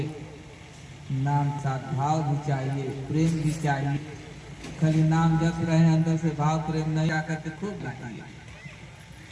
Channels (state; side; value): identical; both; correlation 1.00